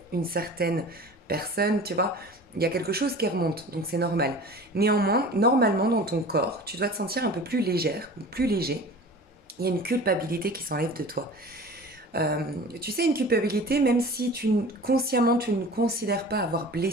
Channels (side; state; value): both; normal; correlation 0.39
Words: une certaine personne, tu vois. Il y a quelque chose qui remonte, donc c'est normal. Néanmoins, normalement dans ton corps, tu dois te sentir un peu plus légère ou plus léger. Il y a une culpabilité qui s'enlève de toi. Tu sais, une culpabilité, même si consciemment tu ne considères pas avoir